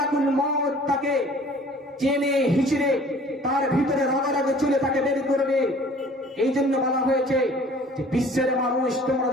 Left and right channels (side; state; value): both; normal; correlation 0.50